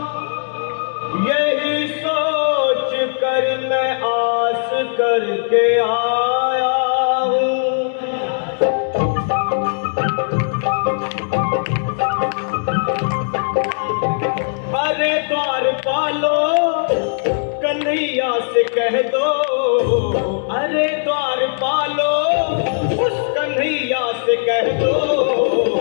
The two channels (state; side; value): silent; right; digital silence